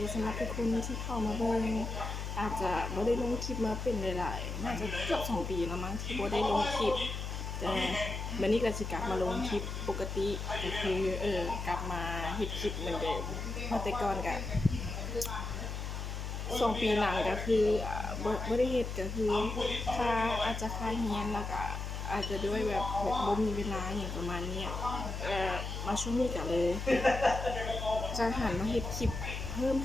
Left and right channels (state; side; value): noise; left; hum, 5 dB below the sound